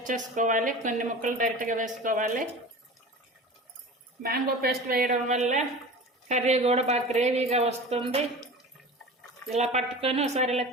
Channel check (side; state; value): both; normal; correlation 0.35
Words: చేసుకోవాలి, కొన్ని ముక్కలు డైరెక్ట్గా వేసుకోవాలి. మ్యాంగో పేస్ట్ వేయడం వల్ల కర్రీ కూడా బాగా గ్రేవీగా వస్తుంది. ఇలా పట్టుకొని ఒకసారి ఇలా